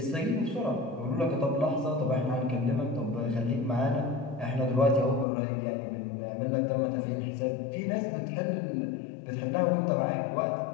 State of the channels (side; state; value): right; drops out; at 5.2 s